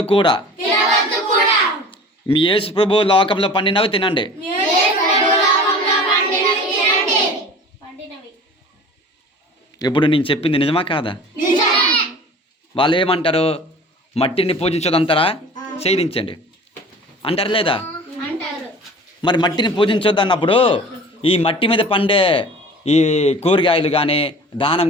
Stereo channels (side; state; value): both; normal; correlation 0.42